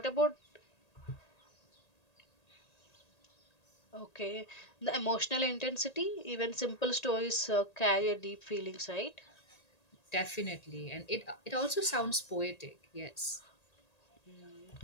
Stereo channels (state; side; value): late; right; 1.8 ms